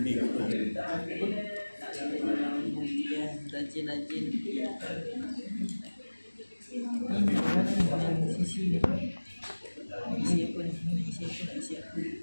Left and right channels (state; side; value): inverted; both; correlation -1.00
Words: Rajin-rajin. Sisi ni. Isi apa ni? Isi apa?